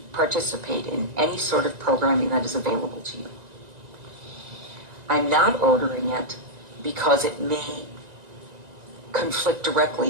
participate in any sort of programming that is available to you. I'm not ordering it because it may conflict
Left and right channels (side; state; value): left; late; 1.9 ms